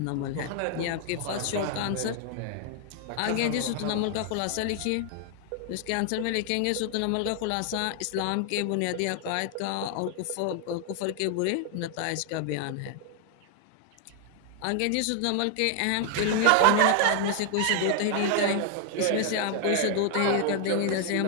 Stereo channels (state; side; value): different; both; correlation 0.00